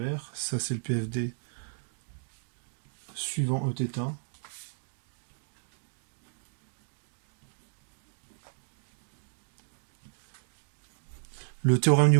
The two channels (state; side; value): silent; left; digital silence